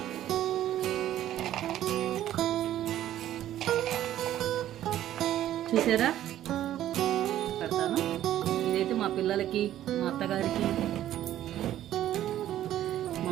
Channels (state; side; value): quieter; left; 12.5 dB